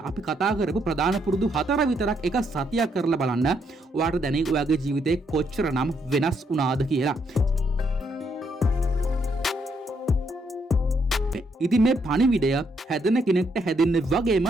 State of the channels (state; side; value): normal; both; correlation 0.74